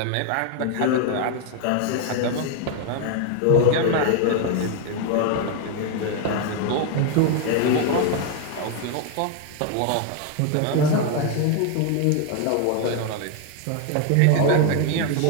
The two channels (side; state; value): both; different; correlation 0.01